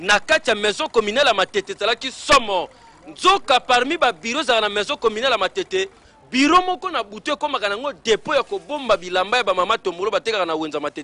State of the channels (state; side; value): identical; both; correlation 1.00